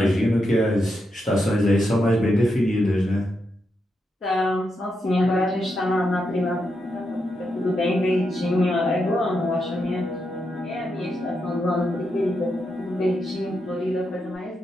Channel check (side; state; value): both; normal; correlation 0.84